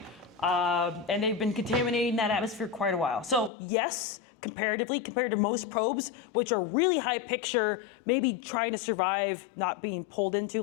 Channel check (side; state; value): right; drops out; at 3.5 s